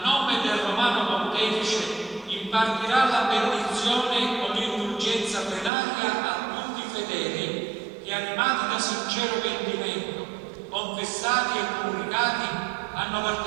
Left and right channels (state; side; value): drops out; left; at 5.7 s